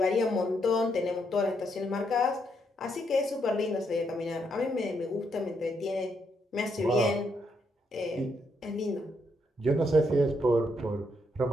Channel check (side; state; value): both; normal; correlation 0.77